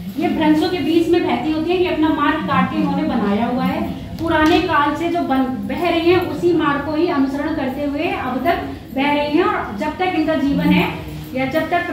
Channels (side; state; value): both; identical; correlation 1.00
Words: ये भ्रंशों के बीच में बहती होती है। ये अपना मार्ग काट के इन्होंने बनाया हुआ है। पुराने काल से जो बह रही हैं उसी मार्ग को ही अनुसरण करते हुए अब तक बह रही हैं, और जब तक इनका जीवन है या जब तक